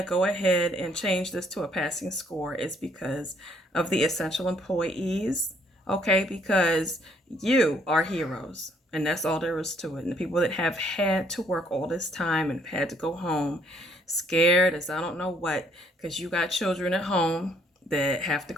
to go ahead and change this to a passing score is because of the essential employees, okay? Because you are heroes, and that's all there is to it. And the people that have had to work all this time and had to go home scared as I don't know what, because you got children at home that have to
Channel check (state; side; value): normal; both; correlation 0.66